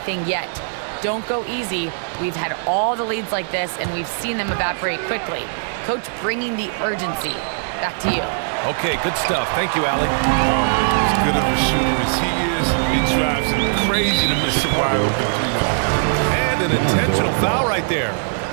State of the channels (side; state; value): left; silent; digital silence